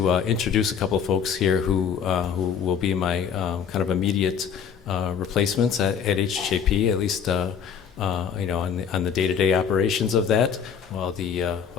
introduce a couple of folks here who will be my kind of immediate replacements at HHAP, at least on the day-to-day operations of that, while the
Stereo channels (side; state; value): right; quieter; 7.3 dB